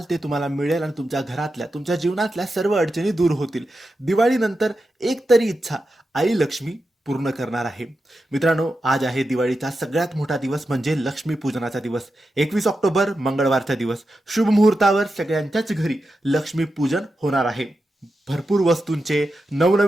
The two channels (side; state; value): both; normal; correlation 0.89